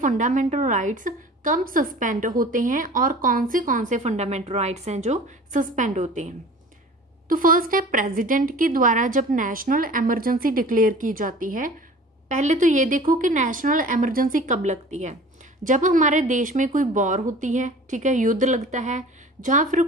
राइट्स कब सस्पेंड होते हैं और कौन से फंडामेंटल राइट्स हैं जो सस्पेंड होते हैं। तो फर्स्ट है, प्रेसिडेंट के द्वारा जब नेशनल इमरजेंसी डिक्लेयर की जाती है। पहले तो ये देखो कि नेशनल इमरजेंसी कब लगती है, जब हमारे देश में कोई वॉर होती है, ठीक है, युद्ध लगता है, जहाँ फिर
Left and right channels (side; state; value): both; normal; correlation 0.43